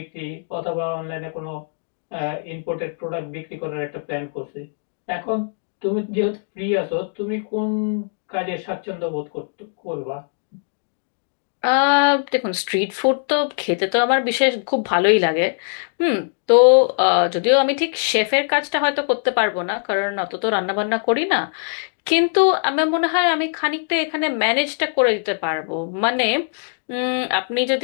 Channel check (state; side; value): silent; right; digital silence